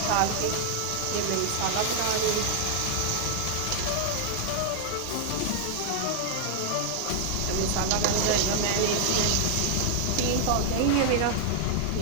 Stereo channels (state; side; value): different; both; correlation 0.00